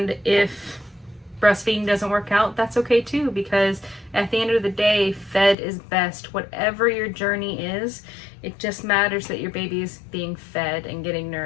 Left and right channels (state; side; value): drops out; right; at 5.6 s